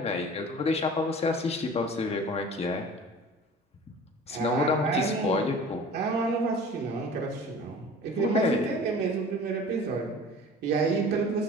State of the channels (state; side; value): normal; both; correlation 0.42